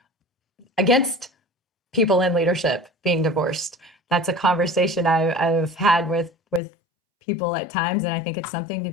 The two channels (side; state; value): right; drops out; at 6.6 s